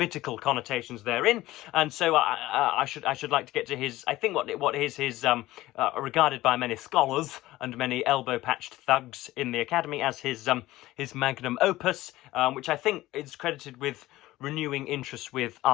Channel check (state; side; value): quieter; right; 16.9 dB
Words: connotations therein. And so I should like to get to his, I think what is his regarded by many scholars and many elbow-patched thugs in the academy as his magnum opus, which I think is credited with renewing interest with